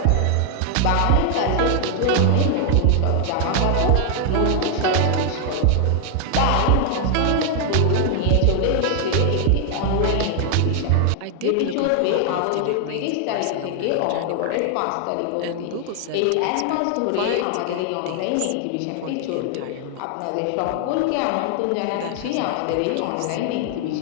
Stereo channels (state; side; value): different; both; correlation 0.00